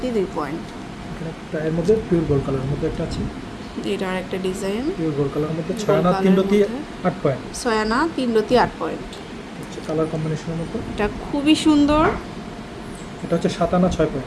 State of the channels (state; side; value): identical; both; correlation 1.00